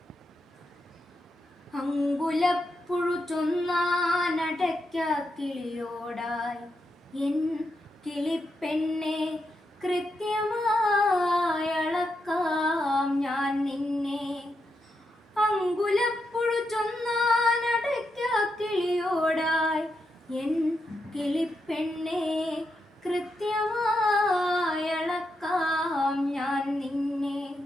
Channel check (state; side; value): normal; both; correlation 0.84